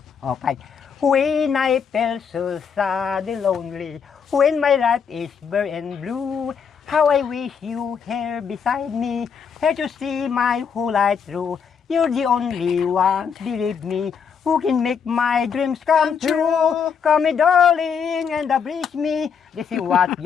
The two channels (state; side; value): quieter; right; 6.7 dB